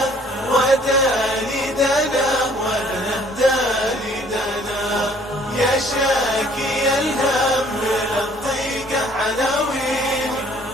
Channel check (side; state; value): both; normal; correlation 0.58